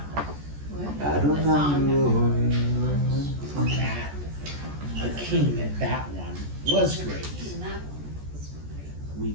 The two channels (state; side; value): late; left; 14 ms